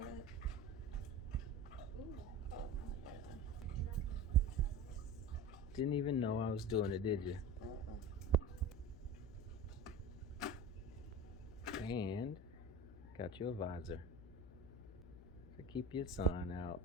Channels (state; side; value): noise; left; hum, 16 dB below the sound